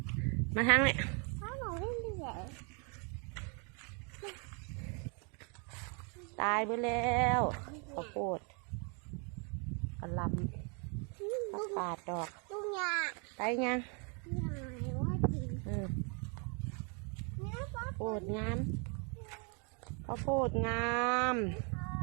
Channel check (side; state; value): left; quieter; 36.4 dB